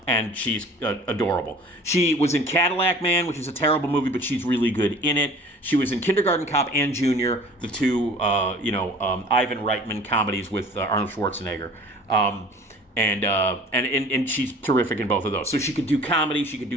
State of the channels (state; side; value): normal; both; correlation 0.47